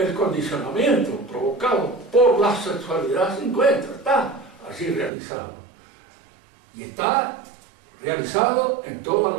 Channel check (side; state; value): left; drops out; at 5.1 s